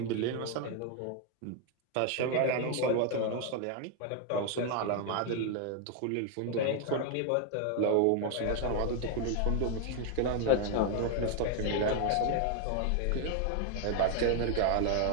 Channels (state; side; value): different; both; correlation 0.01